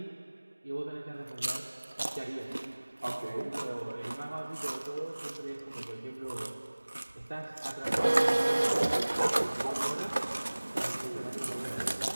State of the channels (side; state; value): both; inverted; correlation -1.00